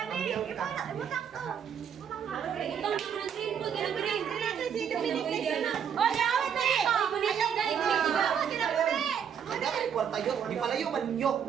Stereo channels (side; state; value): left; quieter; 8.0 dB